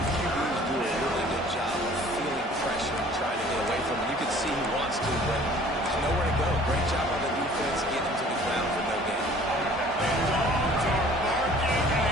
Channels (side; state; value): both; normal; correlation 0.51